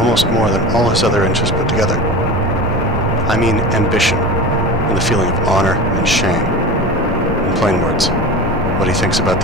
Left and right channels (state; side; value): normal; both; correlation 0.31